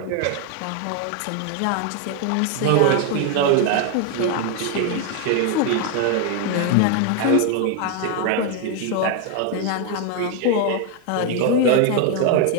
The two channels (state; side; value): different; both; correlation 0.01